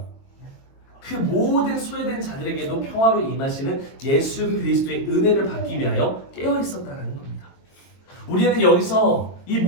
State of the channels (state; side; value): late; right; 22 ms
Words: 그 모든 소외된 자들에게도 평화로 임하시는 예수 그리스도의 은혜를 받기 위하여 깨어 있었다는 겁니다. 우리는 여기서 이